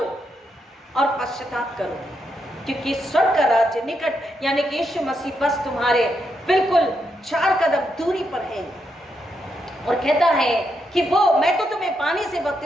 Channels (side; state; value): both; normal; correlation 0.81